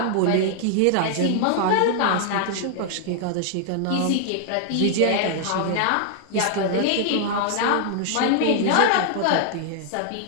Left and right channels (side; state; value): both; different; correlation -0.01